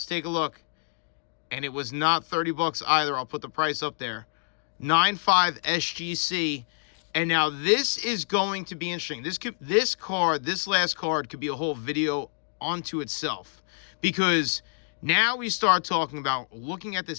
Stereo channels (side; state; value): right; silent; digital silence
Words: take a look. And it was not $30 either. I'll put the price up there. 9.5 SGC. And now this is going to be interesting. This last card could be a whole video onto itself. Because now we start talking about looking at